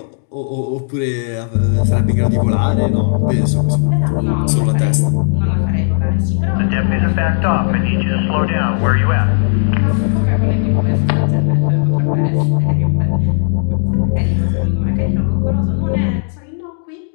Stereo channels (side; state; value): right; silent; digital silence